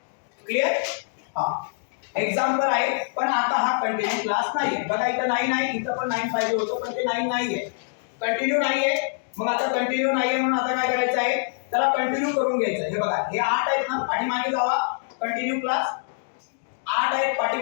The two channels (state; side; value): silent; right; digital silence